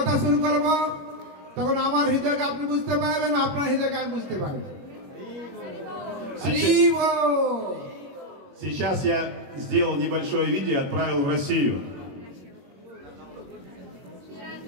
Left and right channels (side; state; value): left; late; 21 ms